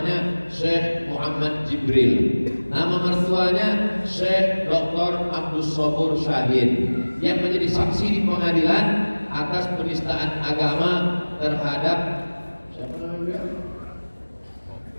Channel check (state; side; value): inverted; both; correlation -1.00